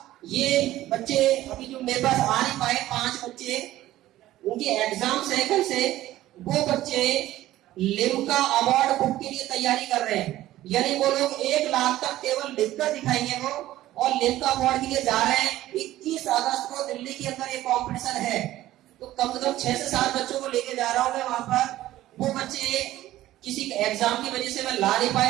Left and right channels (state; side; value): quieter; left; 14.9 dB